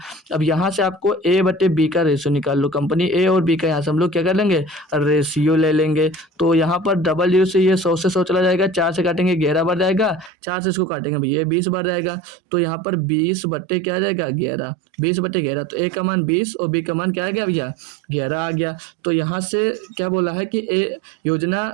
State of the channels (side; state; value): left; drops out; at 10.3 s